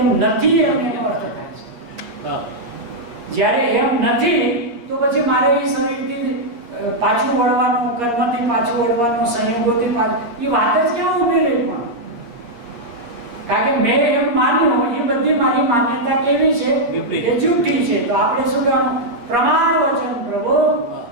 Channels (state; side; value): late; left; 8.5 ms